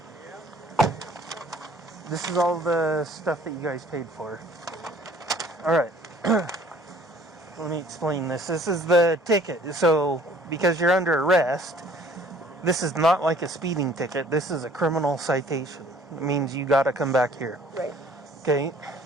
This is all the stuff that you guys paid for. Alright. Let me explain this. This is the ticket. So, because you're under arrest, this is not like a speeding ticket. This is a criminal citation. It means you gotta come back here. Right. Okay.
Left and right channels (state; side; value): normal; both; correlation 0.55